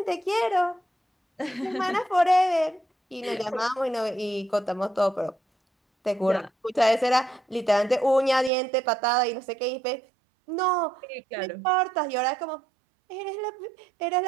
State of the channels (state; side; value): drops out; left; at 8.5 s